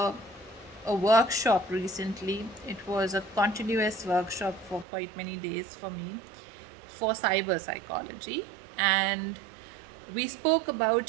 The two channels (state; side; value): drops out; left; at 4.9 s